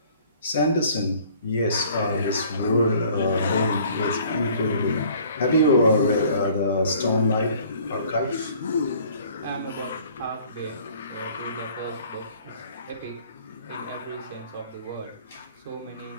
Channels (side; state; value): both; inverted; correlation -0.54